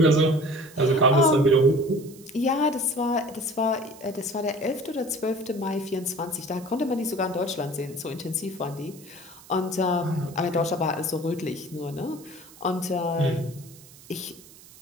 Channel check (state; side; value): noise; right; hiss, 22 dB below the sound